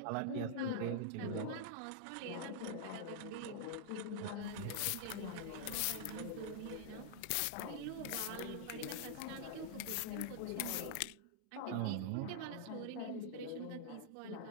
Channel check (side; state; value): both; different; correlation -0.01